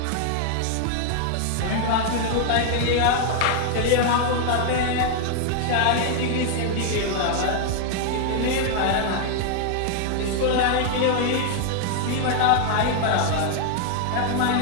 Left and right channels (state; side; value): different; both; correlation 0.00